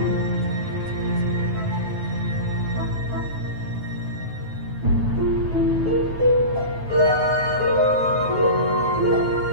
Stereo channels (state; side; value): late; left; 9.3 ms